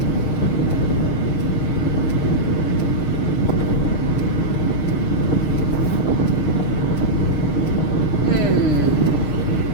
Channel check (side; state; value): right; late; 6.5 ms